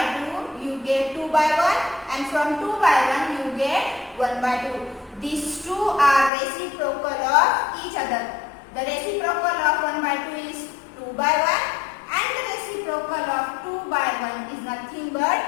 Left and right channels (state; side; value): drops out; right; at 6.3 s